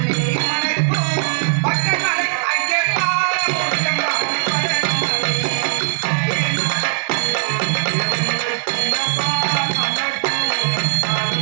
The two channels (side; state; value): left; silent; digital silence